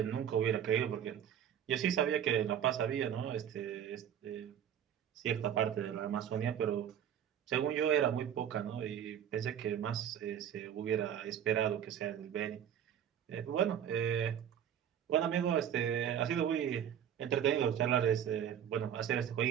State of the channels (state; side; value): quieter; left; 9.4 dB